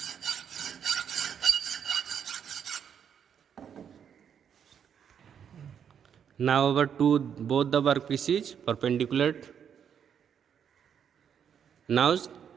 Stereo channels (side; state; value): left; quieter; 8.1 dB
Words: Now our both the workpieces perpendicular. Now